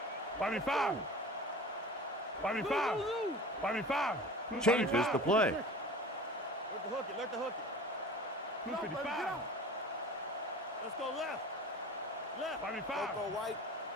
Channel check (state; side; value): normal; both; correlation 0.39